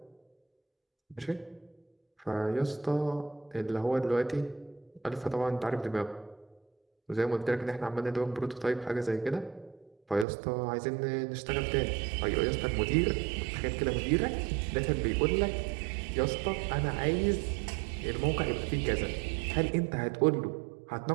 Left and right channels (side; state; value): left; drops out; at 10.2 s